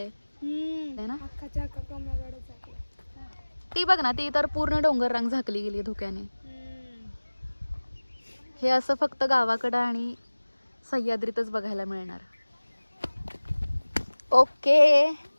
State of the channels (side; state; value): both; inverted; correlation -1.00